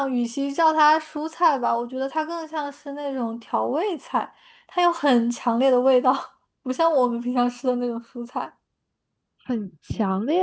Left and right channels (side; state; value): both; identical; correlation 1.00